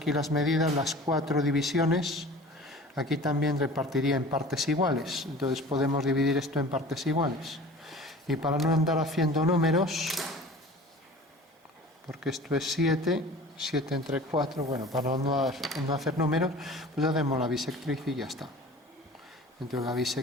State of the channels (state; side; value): normal; both; correlation 0.41